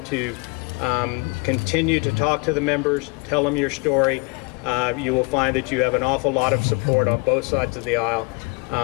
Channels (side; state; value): right; quieter; 30.7 dB